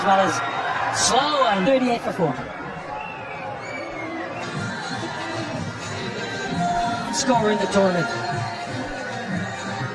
well as slow and 38 for 4. Scorer in the tournament.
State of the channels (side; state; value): both; identical; correlation 1.00